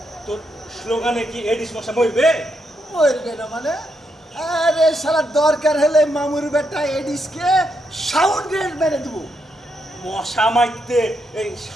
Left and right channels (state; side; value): normal; both; correlation 0.80